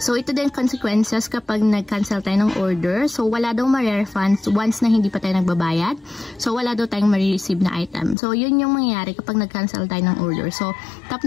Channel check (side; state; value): right; drops out; at 8.2 s